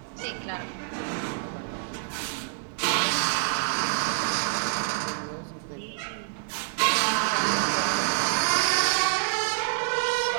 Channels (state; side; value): silent; left; digital silence